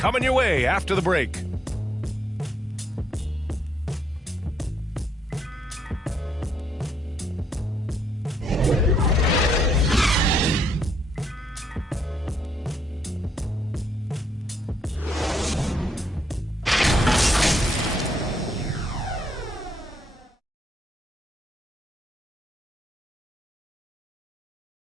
your way after the break.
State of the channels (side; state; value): both; normal; correlation 0.74